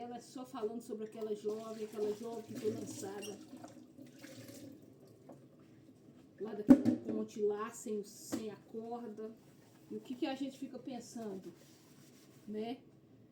só falando sobre aquela jovem que foi lançada lá daquela ponte lá, sem a corda. E o que a gente fica pensando, né?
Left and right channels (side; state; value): both; identical; correlation 1.00